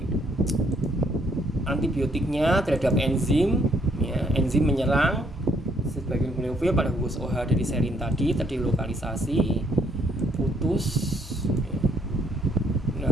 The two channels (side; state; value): both; normal; correlation 0.69